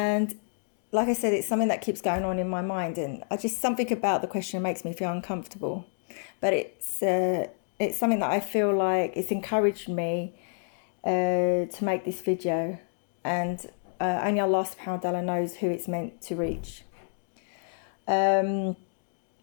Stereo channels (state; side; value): silent; right; 56 dB below the other